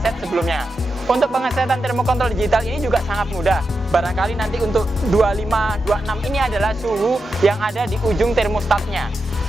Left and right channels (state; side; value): normal; both; correlation 0.88